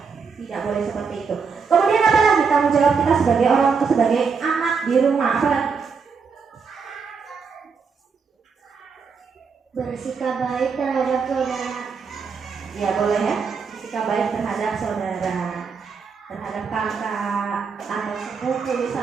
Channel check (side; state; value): left; quieter; 5.5 dB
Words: Tidak boleh seperti itu. Kemudian apa lagi tanggung jawab kita sebagai orang tua, sebagai anak di rumah? Apa lagi? Bersikap baik terhadap saudara. Ya boleh ya. Bersikap baik terhadap saudara, terhadap kakak atau sepupu